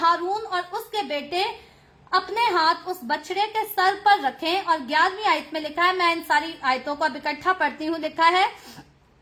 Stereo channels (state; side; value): identical; both; correlation 1.00